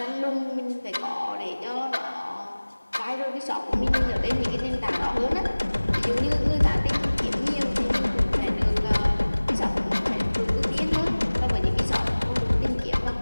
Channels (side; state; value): both; inverted; correlation -1.00